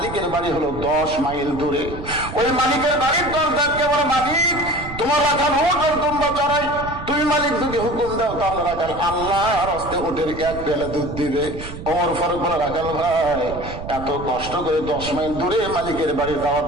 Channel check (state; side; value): noise; right; rumble, 11 dB below the sound